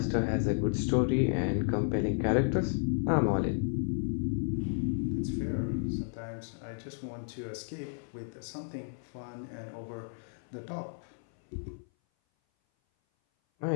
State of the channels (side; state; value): right; silent; 56 dB below the other